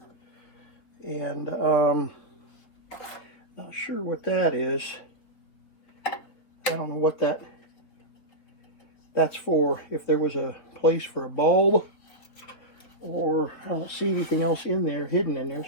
And not sure what that is. I don't know what that's for. If there was a place for a bulb, or I don't see anything else in there, hidden in there.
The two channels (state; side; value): late; right; 4.2 ms